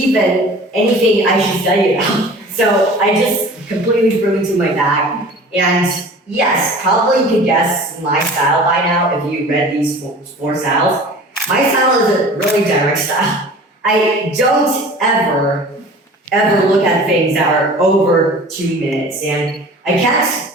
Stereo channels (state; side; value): normal; both; correlation 0.42